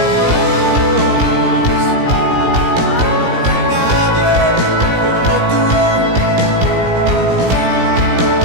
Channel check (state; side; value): late; left; 17 ms